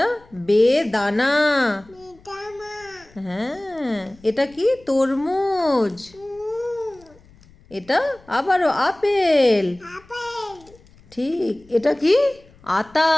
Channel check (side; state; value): left; noise; rumble, 27 dB below the sound